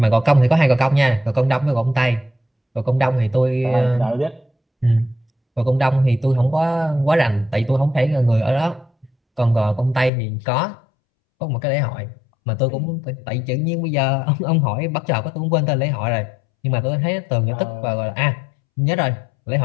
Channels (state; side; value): drops out; right; at 10.1 s